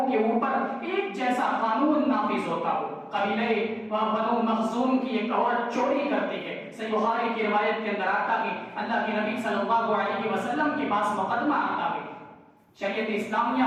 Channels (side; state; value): both; identical; correlation 1.00